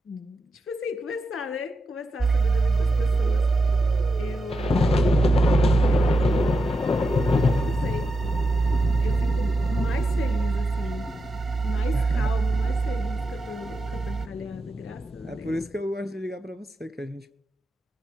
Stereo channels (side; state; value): both; normal; correlation 0.87